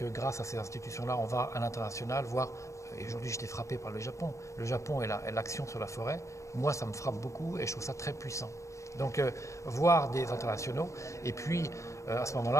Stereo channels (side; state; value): right; late; 0.15 ms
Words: grâce à ces institutions-là, on va à l'international voir. Et aujourd'hui, j'étais frappé par le Japon. Le Japon et l'action sur la forêt, moi, ça me frappe beaucoup et je trouve ça très puissant. Donc, voir des internationaux et puis, à ce